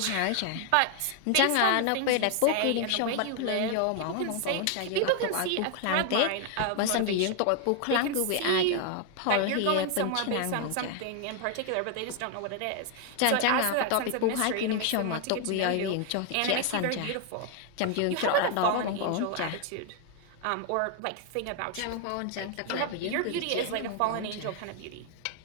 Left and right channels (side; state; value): both; different; correlation 0.00